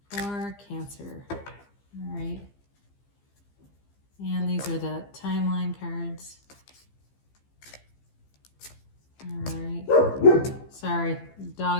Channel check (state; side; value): late; right; 15 ms